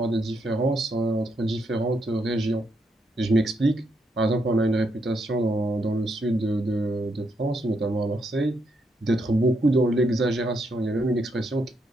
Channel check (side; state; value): both; normal; correlation 0.78